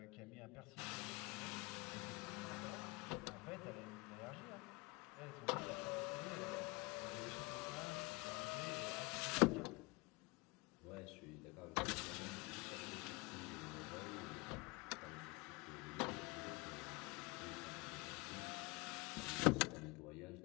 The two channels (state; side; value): quieter; right; 25.3 dB